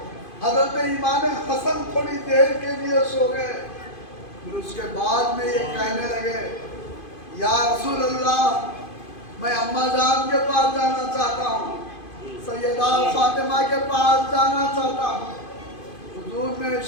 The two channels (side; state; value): right; late; 2.5 ms